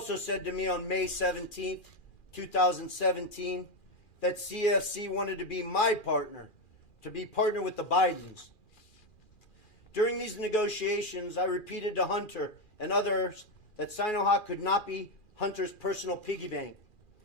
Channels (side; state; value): right; late; 2.4 ms